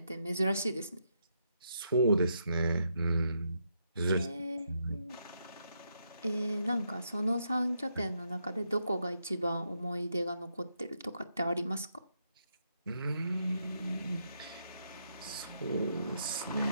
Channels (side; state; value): both; inverted; correlation -0.79